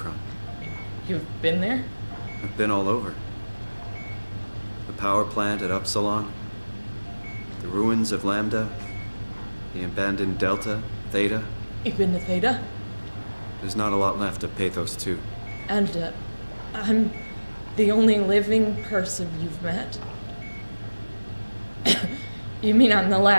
you've been there? I've been all over. The power plant at Upsilon, the ruins of Lambda, the abandoned Delta, Theta. You've been to Theta? There's not a lot left of Pathos 2. And, I'm the only living person you've met? You mean I'm the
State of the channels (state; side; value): inverted; both; correlation -1.00